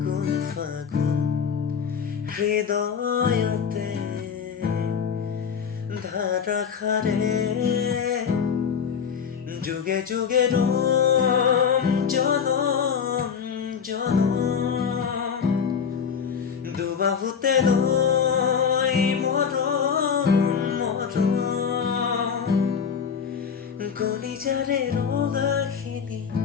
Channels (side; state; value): right; quieter; 6.8 dB